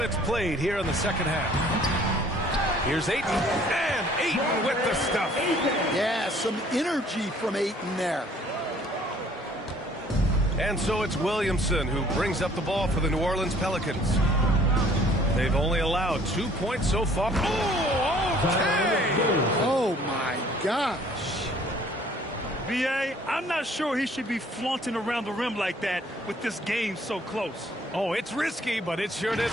played here in the second half. Here's Ayton, and Ayton with the stuff. Yeah, some energy from Ayton there. And so it's Williamson who brings up the ball for the New Orleans Pelicans. They've only allowed 2 points so far. Oh, okay! Oh, my gosh. B.A., I'm not sure he should be flaunting around the rim like that with this game so close. Oh, it's risky, but it sure did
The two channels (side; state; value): both; normal; correlation 0.57